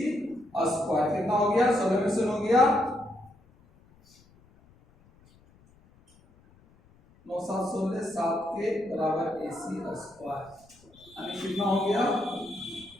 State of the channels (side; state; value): left; noise; rumble, 29 dB below the sound